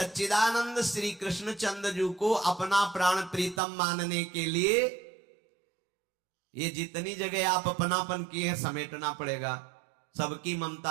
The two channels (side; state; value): left; drops out; at 3.6 s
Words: श्री कृष्ण चंद्र जी को अपना प्राण प्रीतम मानने के लिए ये जितनी जगह आप अपनापन किए समेटना पड़ेगा। सबकी